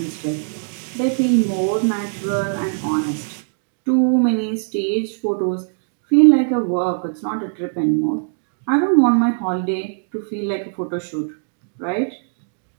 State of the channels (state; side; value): silent; left; digital silence